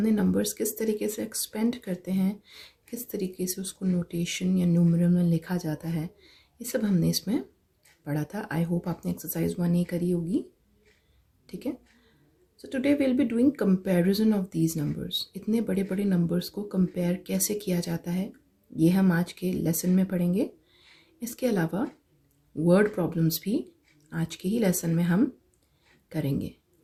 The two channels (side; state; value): both; identical; correlation 1.00